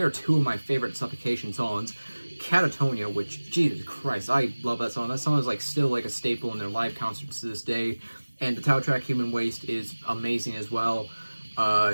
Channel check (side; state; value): both; inverted; correlation -1.00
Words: 2 of my favorite Suffocation songs. Catatonia, which, Jesus Christ, I love that song. That song is like still like a staple in their live concerts to this day. And the title track, Human Waste, is amazing as well.